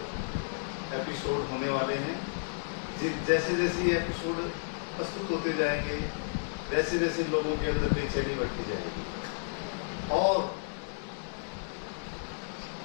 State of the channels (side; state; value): right; silent; digital silence